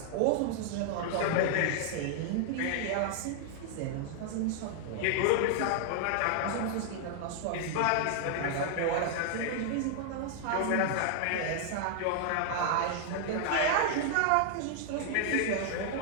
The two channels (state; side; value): different; both; correlation 0.00